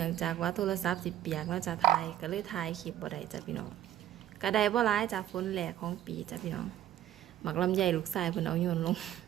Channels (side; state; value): left; quieter; 11.9 dB